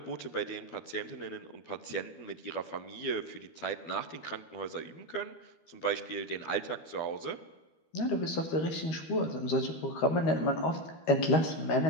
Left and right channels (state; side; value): late; right; 13 ms